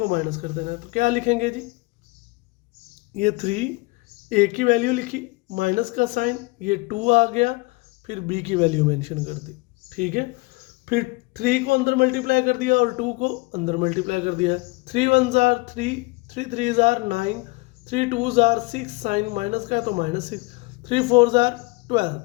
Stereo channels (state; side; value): quieter; right; 25.4 dB